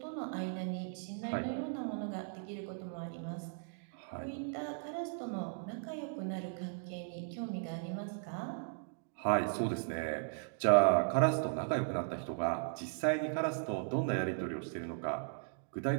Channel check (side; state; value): left; silent; digital silence